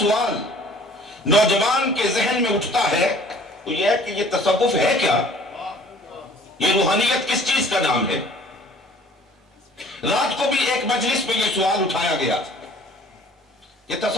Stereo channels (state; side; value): normal; both; correlation 0.53